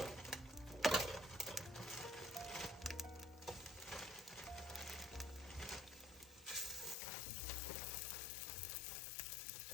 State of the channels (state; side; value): drops out; right; at 7.0 s